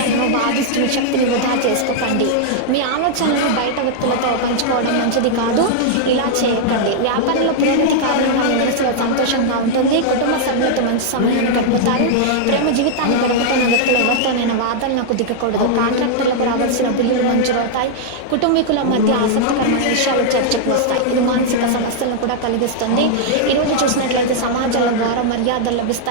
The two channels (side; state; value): both; different; correlation -0.01